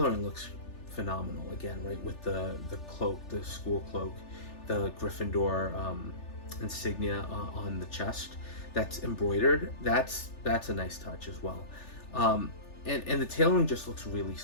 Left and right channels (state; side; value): late; right; 3.4 ms